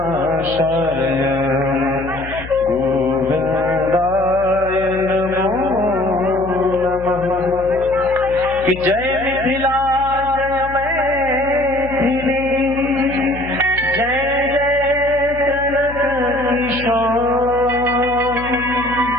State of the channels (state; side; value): noise; left; hum, 13 dB below the sound